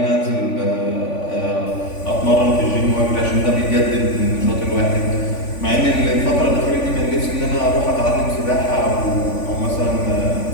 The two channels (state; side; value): late; right; 3.5 ms